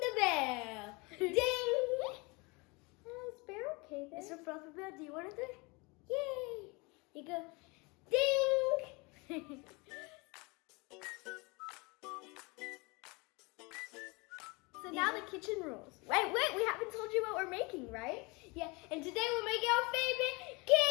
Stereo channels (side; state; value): right; quieter; 27.4 dB